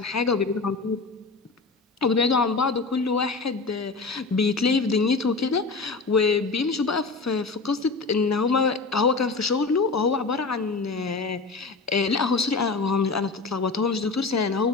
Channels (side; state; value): right; quieter; 4.0 dB